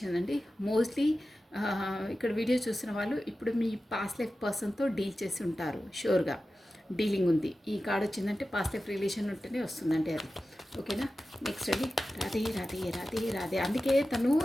అండి. మోస్ట్లీ ఇక్కడ వీడియో చూసిన వాళ్ళు ఇప్పుడు మీ పాస్ట్ లైఫ్ పర్సన్తో డీల్ చేసి ఉంటారు షూర్గా. డీలింగ్ ఉంది. ఈ కార్డ్ వచ్చిందంటే పాస్ట్ లైఫ్ రిలేషన్ ఉంటేనే వస్తుందంటే అది. ఓకేనా? నెక్స్ట్ అండి, రాధే రాధే రాధే రాధే. అందుకే తను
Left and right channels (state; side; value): normal; both; correlation 0.94